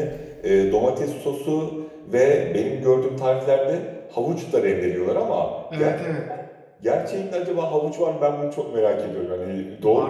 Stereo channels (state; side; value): identical; both; correlation 1.00